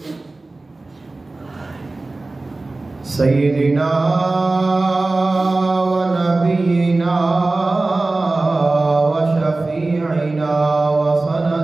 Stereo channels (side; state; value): left; quieter; 3.2 dB